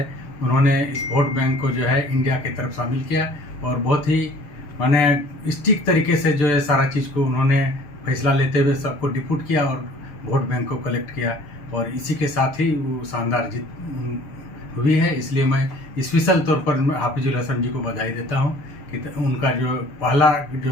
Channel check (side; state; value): right; late; 6.6 ms